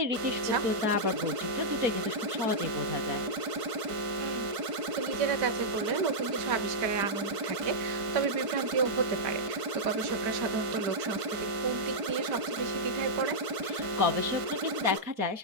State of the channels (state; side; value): late; left; 4.5 ms